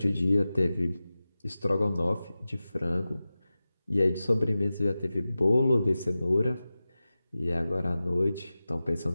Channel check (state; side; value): inverted; both; correlation -0.95